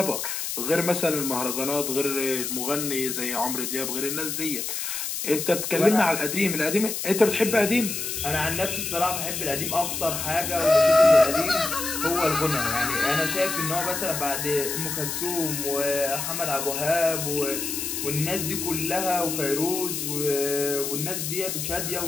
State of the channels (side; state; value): left; noise; hiss, 3 dB below the sound